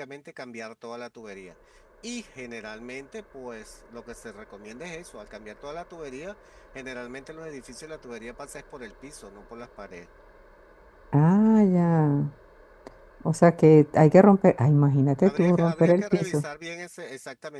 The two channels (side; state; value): both; identical; correlation 1.00